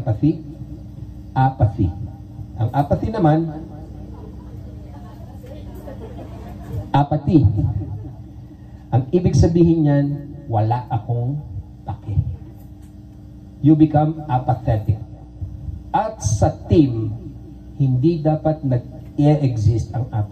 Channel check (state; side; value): identical; both; correlation 1.00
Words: Apathy. Ang apathy naman, apathy. Ang ibig sabihin niyan, wala akong pake. You become apathetic. At sa team, hindi dapat nag-e-exist ang